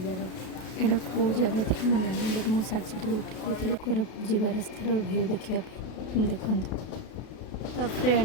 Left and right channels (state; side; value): late; right; 32 ms